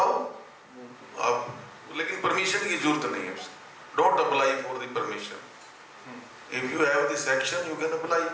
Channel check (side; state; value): both; identical; correlation 1.00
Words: आप, लेकिन परमिशन की जरूरत नहीं है उसकी। Don't apply for the permission, if you have the section you can apply,